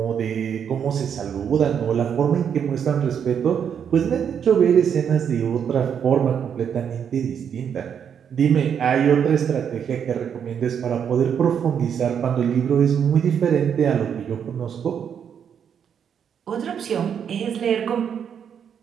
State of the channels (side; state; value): left; quieter; 7.9 dB